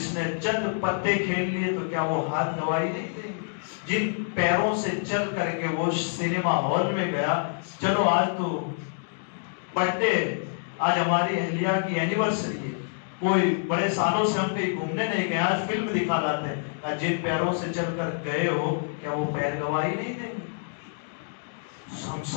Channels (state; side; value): silent; right; digital silence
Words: نے چند پتے کھیل لیے تو کیا وہ ہاتھ گواہی نہیں دیں گے؟ جن پیروں سے چل کر کے وہ سینما ہال میں گیا، چلو آج تو برتھ ڈے، آج ہماری اہلیہ کی اینیورسری ہے، کوئی بڑے سالوں سے ہم کہیں گھومنے نہیں گئے، آج فلم دکھا لاتے ہیں، جن پیروں سے چل کر گئے ہو کیا وہ پیر گواہی نہیں دیں گے؟ ہم